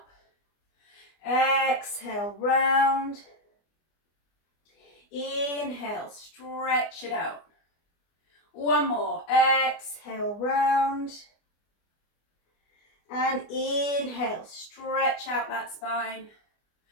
Exhale, round. Inhale, stretch it out. One more, exhale, round. And inhale, stretch out that spine.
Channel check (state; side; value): late; right; 24 ms